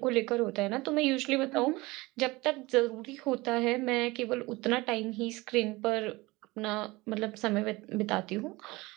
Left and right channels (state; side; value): quieter; left; 21.8 dB